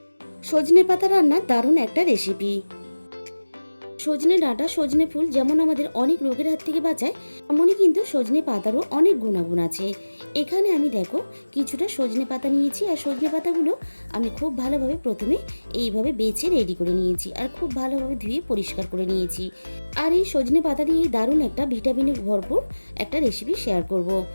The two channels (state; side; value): inverted; both; correlation -1.00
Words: সজনে পাতা রান্নার দারুণ একটা রেসিপি। সজনে ডাঁটা, সজনে ফুল যেমন আমাদের অনেক রোগের হাত থেকে বাঁচায়, তেমনই কিন্তু সজনে পাতারও অনেক গুণাগুণ আছে। এখানে আমি দেখো কিছুটা সজনে পাতা নিয়েছি, আর সজনে পাতাগুলো আমি খুব ভালোভাবে প্রথমে এইভাবে বেছে রেডি করে নিয়েছি, আর খুব ভালোভাবে ধুয়ে পরিষ্কার করে নিয়েছি। আর এই সজনে পাতা দিয়েই দারুণ একটা ভিটামিনে ভরপুর একটা রেসিপি শেয়ার করব।